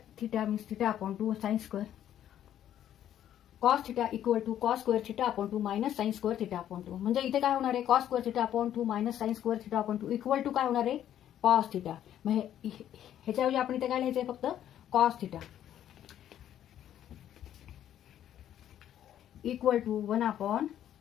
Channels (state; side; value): quieter; right; 10.9 dB